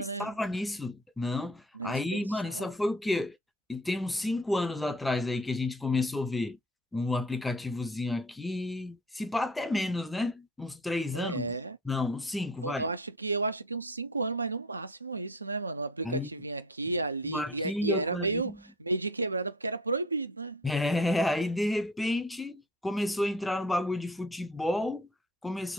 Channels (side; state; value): both; normal; correlation 0.43